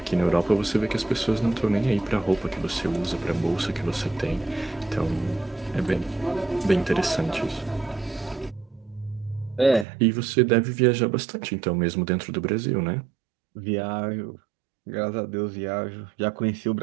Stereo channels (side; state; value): left; drops out; at 9.9 s